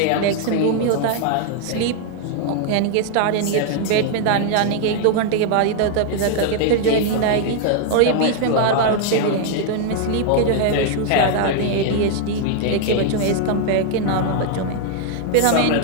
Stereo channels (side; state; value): both; different; correlation 0.00